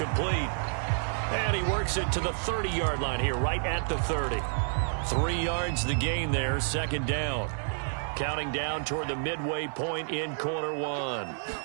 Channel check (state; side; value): silent; left; digital silence